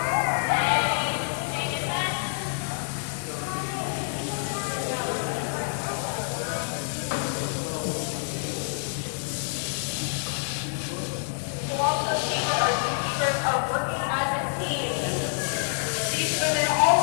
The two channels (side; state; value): right; silent; 60 dB below the other